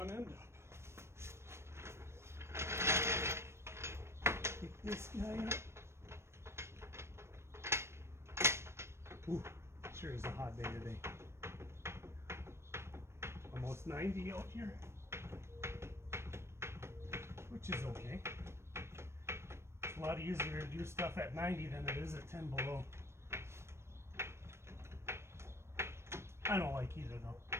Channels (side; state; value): left; late; 0.13 ms